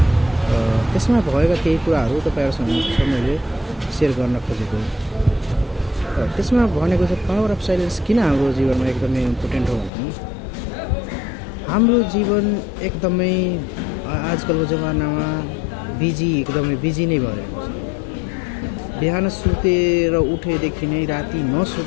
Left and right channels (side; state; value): right; drops out; at 9.9 s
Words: त्यसमा भएका केही कुराहरू तपाईँहरूसँग मैले सेयर गर्न खोजेको। त्यसमा भनेको चाहिँ पावर अफ साइलेन्स किन हाम्रो जीवनमा एकदमै इम्पोर्टेन्ट हो भने हाम्रो जीवन एकदमै आजकलको जमानामा एकदमै बिजी नै भइरहेको छ। बिहान सुतेर उठेदेखि नै राति